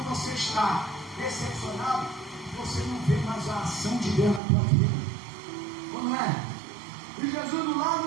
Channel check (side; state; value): left; drops out; at 4.4 s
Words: você está decepcionado, você não vê mais a ação de Deus na tua vida. Ou não é? E Jesus do